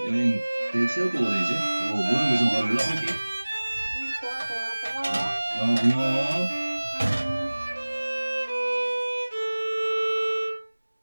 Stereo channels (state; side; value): inverted; both; correlation -1.00